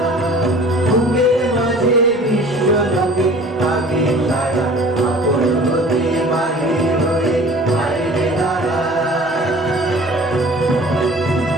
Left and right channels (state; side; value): normal; both; correlation 0.46